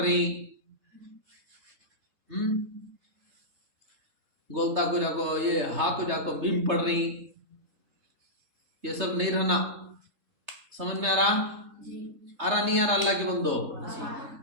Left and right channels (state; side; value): late; left; 3.3 ms